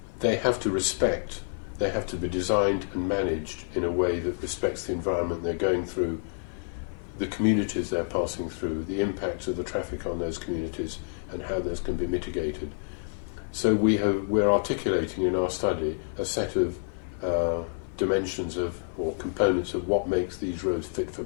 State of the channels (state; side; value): silent; right; 59 dB below the other